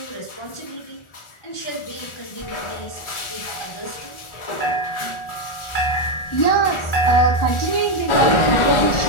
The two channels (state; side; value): late; right; 1.4 ms